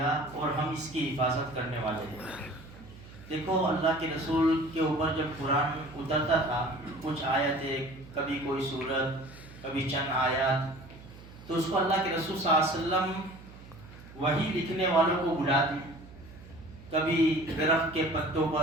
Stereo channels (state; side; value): noise; right; hum, 18 dB below the sound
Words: اور ہم اس کی حفاظت کرنے والے ہیں. دیکھو اللہ کے رسول کے اوپر جب قرآن اترتا تھا کچھ آیتیں، کبھی کوئی سورت، کبھی چند آیات، تو اس کو اللہ کے رسول صلی اللہ علیہ وسلم وہی لکھنے والوں کو بلاتے، کبھی درخت کے پتوں